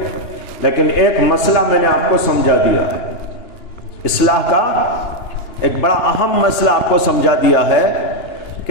لیکن ایک مسئلہ میں نے آپ کو سمجھا دیا ہے، اصلاح کا ایک بڑا اہم مسئلہ آپ کو سمجھا دیا ہے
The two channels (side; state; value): right; late; 2.9 ms